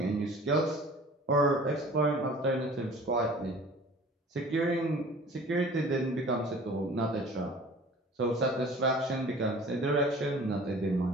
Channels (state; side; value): normal; both; correlation 0.45